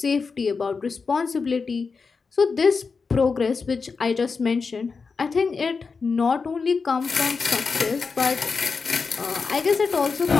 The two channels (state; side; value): quieter; right; 4.9 dB